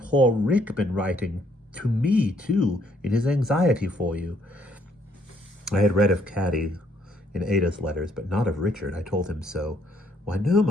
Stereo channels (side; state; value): both; normal; correlation 0.68